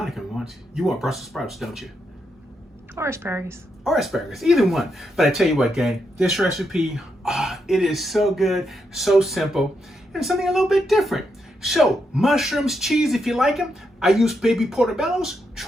wants. You want Brussels sprouts, don't you? Or asparagus. Or asparagus, either one. But I tell you what, gang, this recipe, it is so good, so simple, and something a little bit different. So, mushrooms, cheese, if you like them. I use baby portobellos.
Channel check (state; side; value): normal; both; correlation 0.82